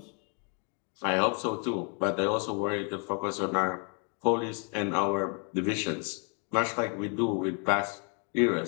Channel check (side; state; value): right; quieter; 39.2 dB